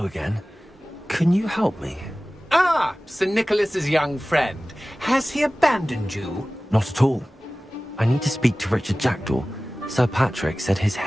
again. Can you help me? Ah, Sir Nicholas's young friend. Has he abandoned you? Not at all. I need to speak to Richard Jackdaw. Sir Patrick said his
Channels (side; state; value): both; normal; correlation 0.97